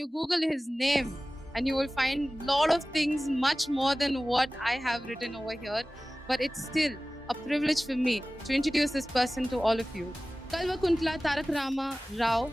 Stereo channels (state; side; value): normal; both; correlation 0.97